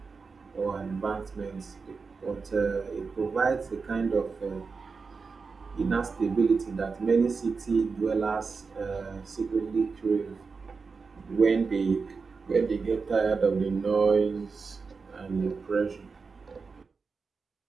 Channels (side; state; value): left; quieter; 4.8 dB